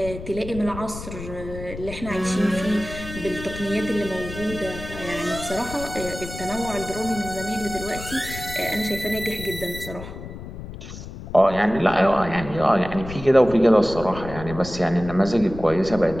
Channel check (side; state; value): left; noise; rumble, 11 dB below the sound